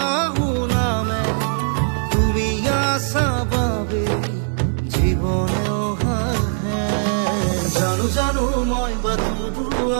নামে তুমি আসা বাবে জীবনেও হাহে জানো জানো মই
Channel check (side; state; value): left; silent; 66 dB below the other